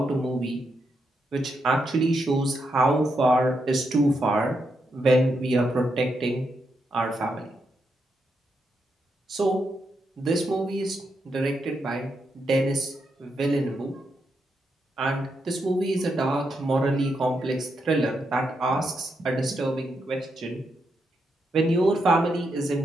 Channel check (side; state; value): both; normal; correlation 0.82